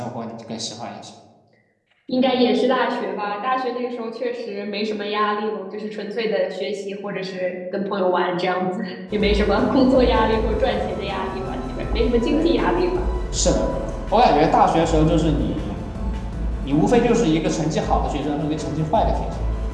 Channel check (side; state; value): both; identical; correlation 1.00